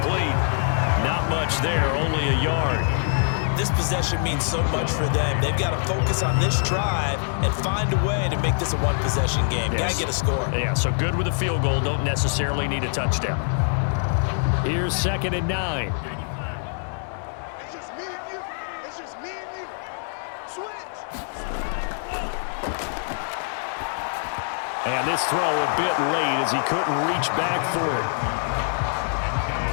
Not much there, only a yard. This possession means so much for them. They've got to focus on this drive and find a way to make this a 1-possession game. Yes. Got to get a score. Yeah, so good with a field goal. Don't necessarily need a touchdown. Here's 2nd and 9. It's just me and you. It's just me and you. Switch. And this throw a bit late as he couldn't reach back for it.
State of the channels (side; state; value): right; silent; 62 dB below the other